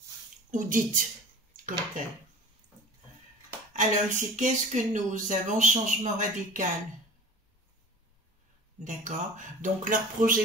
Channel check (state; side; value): normal; both; correlation 0.40